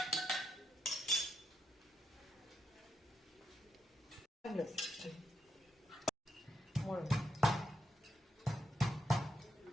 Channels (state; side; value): normal; both; correlation 0.81